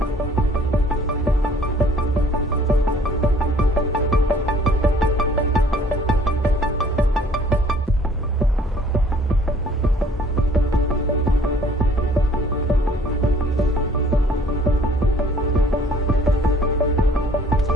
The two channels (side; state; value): both; normal; correlation 0.57